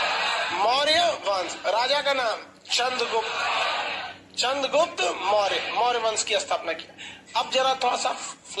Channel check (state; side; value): identical; both; correlation 1.00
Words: मौर्य वंश। राजा का नाम चंद्रगुप्त। चंद्रगुप्त मौर्य, मौर्य वंश की स्थापना किया। अब जरा थोड़ा सा